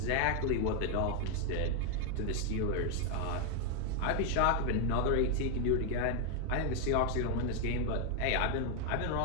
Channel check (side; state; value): both; different; correlation 0.01